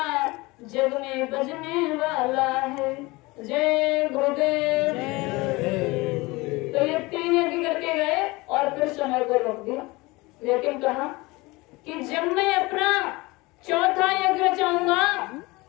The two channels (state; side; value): quieter; right; 22.8 dB